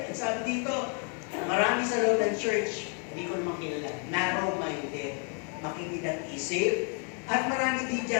At sabi dito, marami sa loob ng church, hindi ko naman kilala, narrow-minded, makikinig isip, at marami din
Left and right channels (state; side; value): quieter; right; 39.6 dB